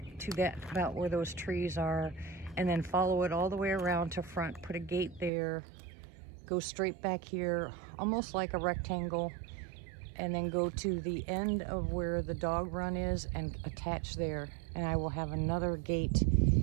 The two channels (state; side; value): drops out; left; at 5.3 s